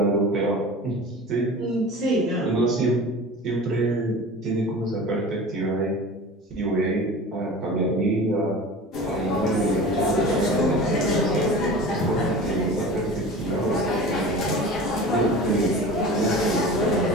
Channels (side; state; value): both; normal; correlation 0.37